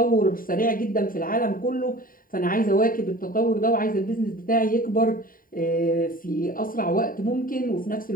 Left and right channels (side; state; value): right; late; 0.41 ms